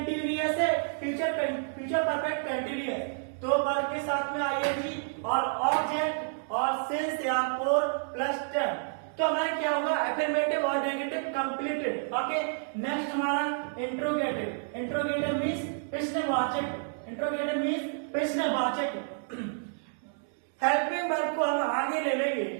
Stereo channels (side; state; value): left; silent; digital silence